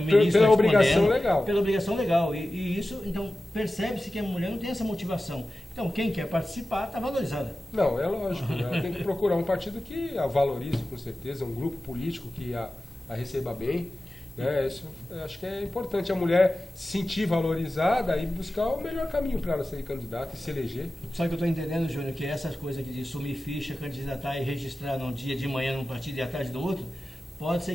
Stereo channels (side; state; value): both; normal; correlation 0.95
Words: ministro pela obrigação legal. Pela obrigação legal. E isso, então, percebe-se que a mulher não tem essa motivação. Então, quem quer participar está valorizada. Não, é lógico. Ela tem que procurar um partido que a valorize, com certeza, um grupo político que a receba bem. Isso, acho que é importante a mulher se sentir valorizada e buscar o melhor caminho para ela ser candidata e se eleger. Só que eu estou entendendo, Júnior, que essas coisas aqui de sumir ficha, candidatar e registrar num dia de manhã num partido e à tarde do outro, pode ser